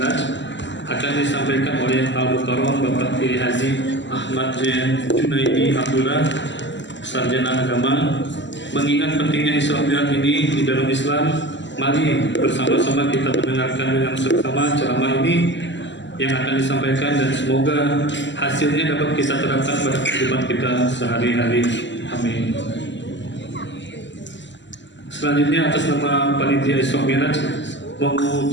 akan disampaikan oleh Al-Mukarram Bapak Kiai Haji Ahmad Juhaidi Abdullah, Sarjana Agama. Mengingat pentingnya Isra Mi'raj ini di dalam Islam, mari bersama-sama kita mendengarkan dengan seksama ceramah ini yang akan disampaikan, dan semoga hasilnya dapat kita terapkan pada kehidupan kita sehari-hari. Amin. Selanjutnya atas nama Panitia Isra Mi'raj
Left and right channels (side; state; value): right; late; 0.53 ms